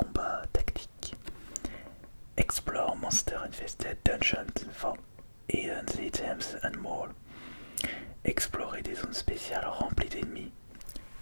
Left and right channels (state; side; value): inverted; both; correlation -1.00